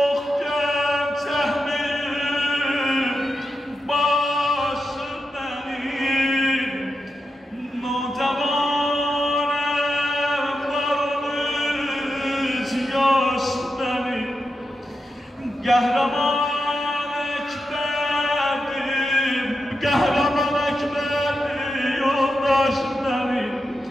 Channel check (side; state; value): both; normal; correlation 0.88